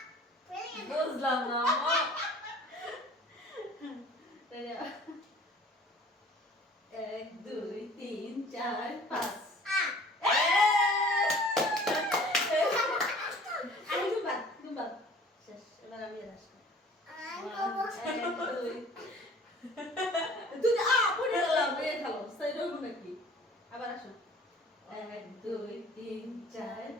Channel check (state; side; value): normal; both; correlation 0.49